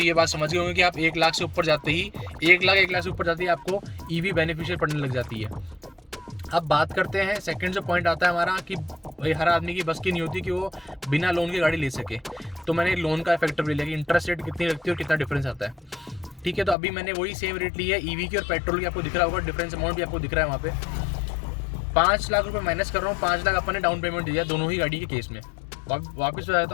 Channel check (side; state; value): right; drops out; at 16.8 s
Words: ये बात समझ गए होंगे कि आप 1 लाख से ऊपर जाते ही 1 लाख से ऊपर जाते ही आपको ईवी बेनिफिशियल पड़ने लग जाती है। अब बात करते हैं सेकंड जो पॉइंट आता है हमारा कि भाई हर आदमी की बस की नहीं होती कि वो बिना लोन की गाड़ी ले सके। तो मैंने लोन का फैक्टर भी लिया कि इंटरेस्ट रेट कितनी लगती है और कितना डिफरेंस आता है। ठीक है, तो अभी मैंने वही सेम रेट ली है ईवी की और पेट्रोल की। आपको दिख रहा होगा डिफरेंस अमाउंट भी आपको दिख रहा है वहाँ पे। 5 लाख रुपए माइनस कर रहा हूँ, 5 लाख अपन ने डाउन पेमेंट दिया दोनों ही गाड़ी के केस में। वापस बता देता